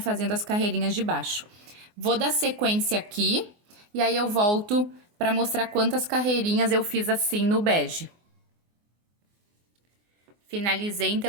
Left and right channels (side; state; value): left; late; 24 ms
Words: as carreirinhas de baixo. Vou dar sequência aqui e aí eu volto para mostrar quantas carreirinhas eu fiz assim no bege. Finalizei,